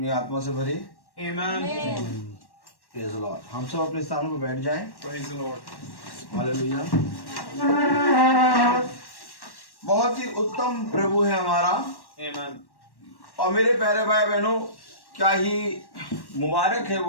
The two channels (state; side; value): late; right; 1.1 ms